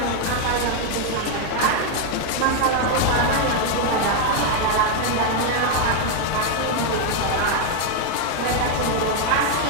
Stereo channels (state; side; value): different; both; correlation 0.01